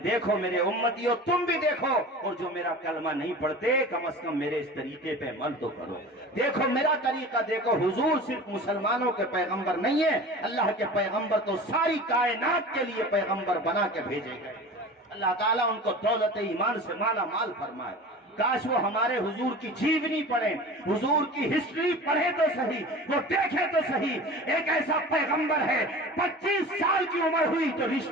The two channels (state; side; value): normal; both; correlation 0.37